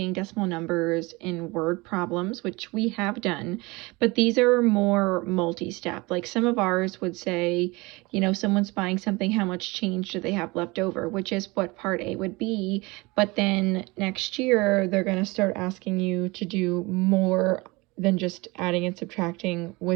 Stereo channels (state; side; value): quieter; left; 24.0 dB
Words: decimal numbers in word problems, which we have done, but these are more multi-step. Like some of ours would say, you know, someone's buying something, how much change do they have left over, which is what part A would be, but then next year they're going to start asking you to do more than just adding and subtracting